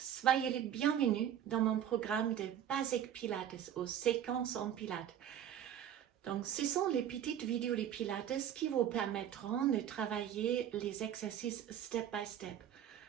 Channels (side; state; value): left; quieter; 10.1 dB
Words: les bienvenus dans mon programme de Basic Pilates aux séquences en Pilates. Donc, ce sont les petites vidéos de Pilates qui vous permettront de travailler les exercices step by step,